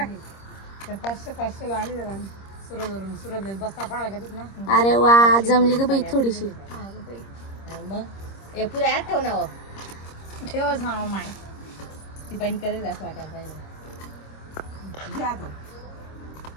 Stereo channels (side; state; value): right; late; 26 ms